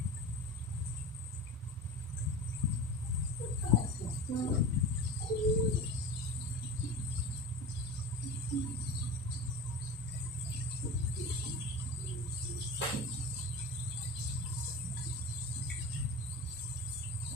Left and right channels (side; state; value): both; normal; correlation 0.31